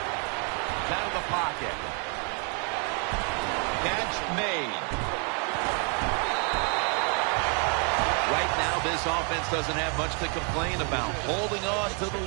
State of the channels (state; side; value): quieter; left; 38.3 dB